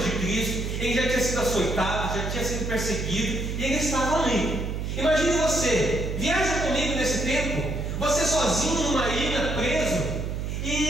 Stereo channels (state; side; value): noise; right; hum, 3 dB below the sound